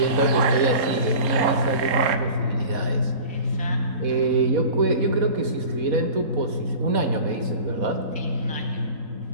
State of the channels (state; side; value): late; left; 4.2 ms